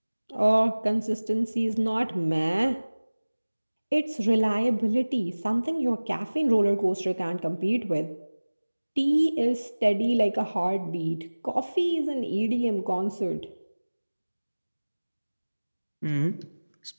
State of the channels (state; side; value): inverted; both; correlation -1.00